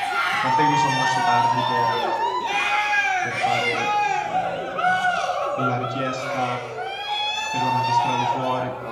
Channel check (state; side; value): identical; both; correlation 1.00